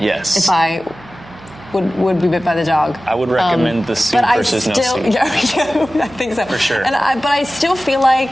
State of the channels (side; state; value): right; noise; hum, 21 dB below the sound